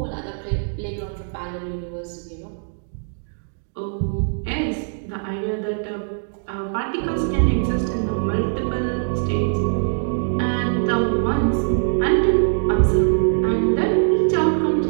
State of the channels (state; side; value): silent; left; digital silence